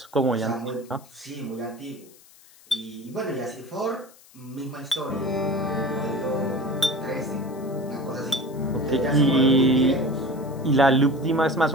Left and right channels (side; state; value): left; noise; hiss, 25 dB below the sound